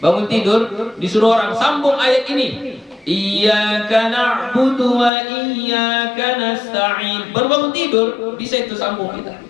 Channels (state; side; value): drops out; right; at 5.1 s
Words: tidur disuruh orang sambung ayat ini. Iyyaka na'budu wa iyyaka nasta'in. Baru bangun tidur bisa itu sambung kita.